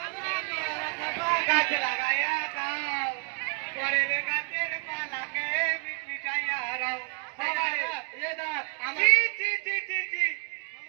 গাছ লাগাইয়া খাও পরের গাছের পালাকে মিটাইয়া রাও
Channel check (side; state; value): left; quieter; 32.6 dB